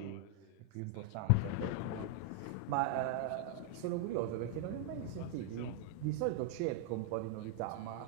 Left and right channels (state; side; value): different; both; correlation 0.00